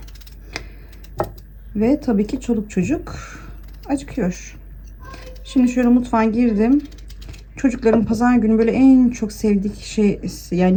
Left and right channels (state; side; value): identical; both; correlation 1.00